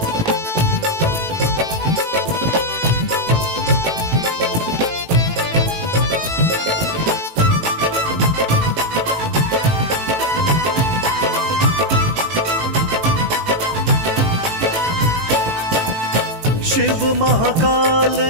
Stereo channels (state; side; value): late; left; 18 ms